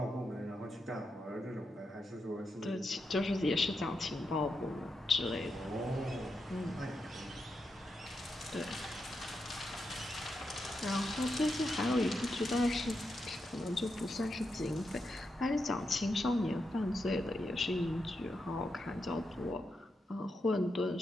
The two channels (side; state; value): both; normal; correlation 0.86